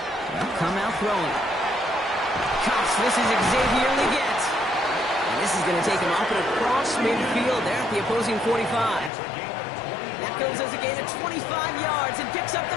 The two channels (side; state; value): right; drops out; at 9.1 s